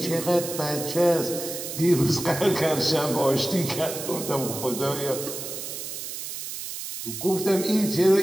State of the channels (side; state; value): right; noise; hiss, 7 dB below the sound